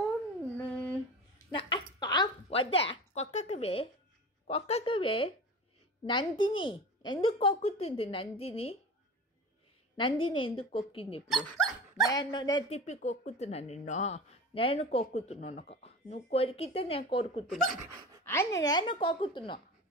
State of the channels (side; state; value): both; normal; correlation 0.33